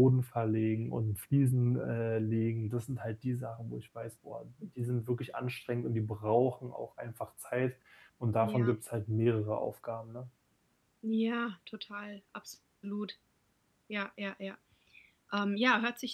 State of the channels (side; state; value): both; identical; correlation 1.00